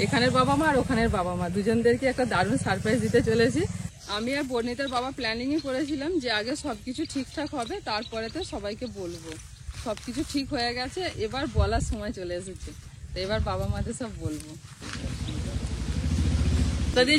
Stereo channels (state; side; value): identical; both; correlation 1.00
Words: এখানের বাবা মা আর ওখানের বাবা মা দুজনদেরকে একটা দারুণ সারপ্রাইজ দিতে চলেছি। আমি আর বর্ণিতার বাবা প্ল্যানিংই করেছিলাম যে আগে সবকিছু ঠিকঠাক হবে, তারপরেতে সবাইকে বলবো। সবকিছু ঠিক হয়ে গেছে, এবার বলার সময় চলে এসেছে, তো এবার বাবা মাদের সব বলবো। দাদি